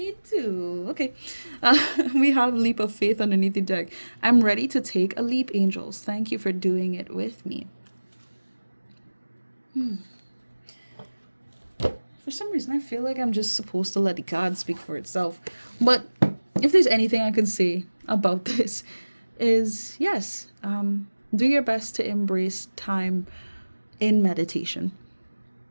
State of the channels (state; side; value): inverted; both; correlation -1.00